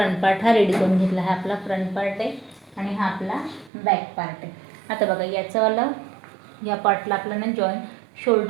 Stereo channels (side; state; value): left; drops out; at 3.7 s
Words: पार्ट हा रेडी करून घेतला. हा आपला फ्रंट पार्ट आहे आणि हा आपला बॅक पार्ट आहे. आता बघा, याचंवालं या पार्टला आपल्याला